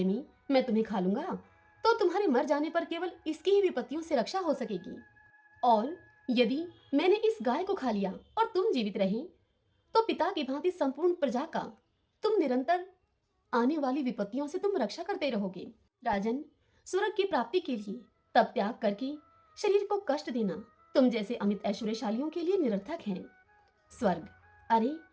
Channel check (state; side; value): identical; both; correlation 1.00